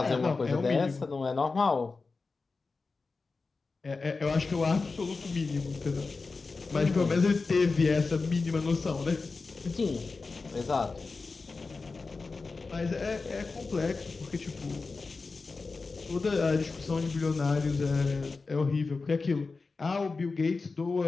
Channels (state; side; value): quieter; right; 4.1 dB